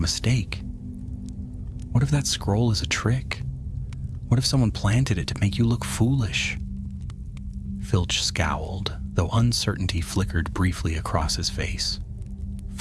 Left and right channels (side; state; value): both; identical; correlation 1.00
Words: mistake. What if that scroll is a trick? What if someone planted it to make you look foolish?" Filch scowled, though uncertainty flickered briefly across his face.